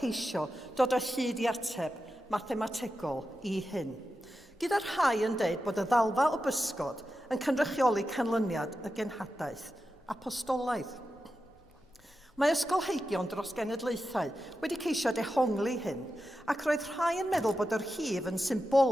dod o hyd i ateb mathemategol i hyn. Gyda'r rhai yn deud bod y ddalfa o bysgod yn cynrychioli canlyniad y genhadaeth apostolaidd. Mae ysgolheigion dros genedlaethau wedi ceisio dehongli hyn, ac roedd rhai yn meddwl bod yr hif yn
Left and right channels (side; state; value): both; normal; correlation 0.90